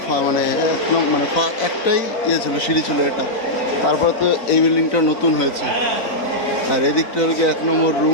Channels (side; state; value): right; late; 4.0 ms